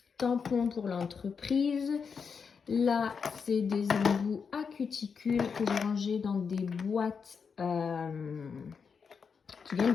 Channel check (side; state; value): right; quieter; 5.9 dB